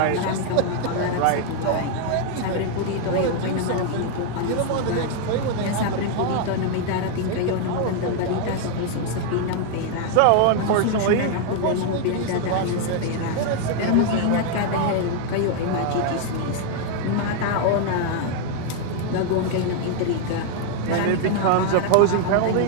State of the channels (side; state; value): both; different; correlation 0.00